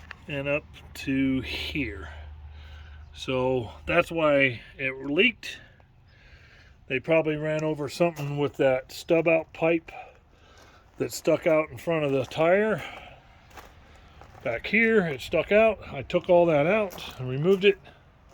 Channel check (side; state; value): both; identical; correlation 1.00